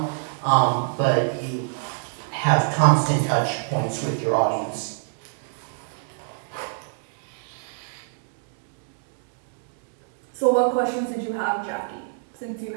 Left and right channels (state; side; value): silent; left; digital silence